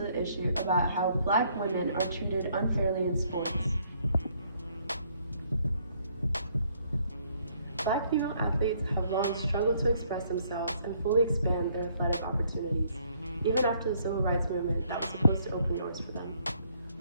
issue about how Black women are treated unfairly in sports. Black female athletes have long struggled to express themselves and fully expand their athletic opportunities, even after the civil rights movement that was supposed to open doors for them.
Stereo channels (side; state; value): both; inverted; correlation -0.67